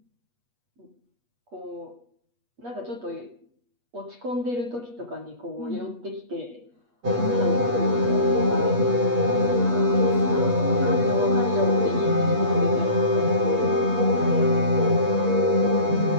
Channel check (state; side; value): late; left; 8.3 ms